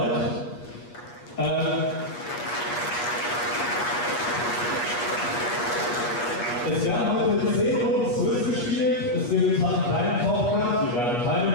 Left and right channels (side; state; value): right; late; 8.3 ms